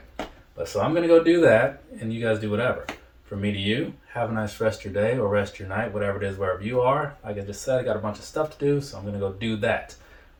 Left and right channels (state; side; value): identical; both; correlation 1.00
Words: But so I'm going to go do that, and you guys do whatever. From me to you, have a nice rest of your day or rest of your night, whatever it is, wherever you are. Like I just said, I got a bunch of stuff to do, so I'm going to go do that.